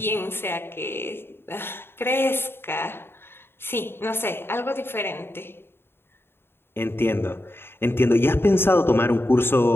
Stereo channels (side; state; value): right; late; 0.11 ms